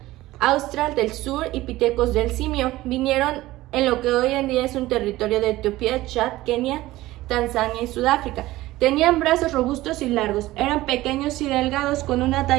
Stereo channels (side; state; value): left; quieter; 17.1 dB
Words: Austral del sur y Pithecus del Simio. Vinieron en lo que hoy en día es un territorio de Etiopía, Chad, Kenia, Tanzania y Sudáfrica. Tenían brazos robustos y largos, eran pequeños y delgados con una